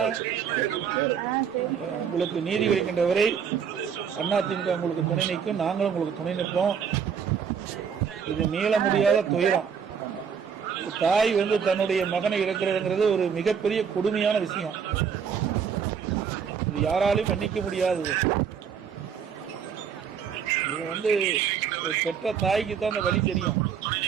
உங்களுக்கு நீதி கிடைக்கின்ற வரை அதிமுக உங்களுக்கு துணை நிற்கும், நாங்களும் உங்களுக்கு துணை நிற்போம். இது மீள முடியாத துயரம். தாய் வந்து தன்னுடைய மகனை இழக்கிறதுங்கிறது ஒரு மிகப்பெரிய கொடுமையான விஷயம். இது யாராலையும் மன்னிக்க முடியாதது. இது வந்து பெற்ற தாய்க்கு தான் அந்த வழி தெரியும்.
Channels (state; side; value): quieter; left; 7.1 dB